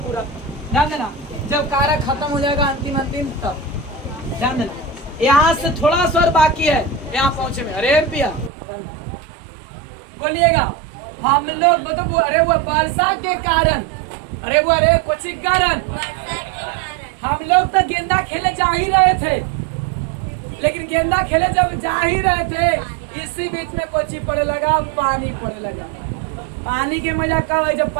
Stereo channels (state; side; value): drops out; left; at 8.5 s